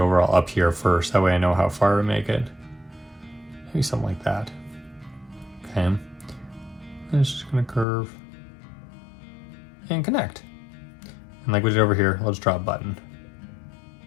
up here first. That way I know how far to make it. Maybe something like that. Okay, and it's just gonna curve and connect. And like we did over here, let's draw a button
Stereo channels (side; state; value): right; drops out; at 7.9 s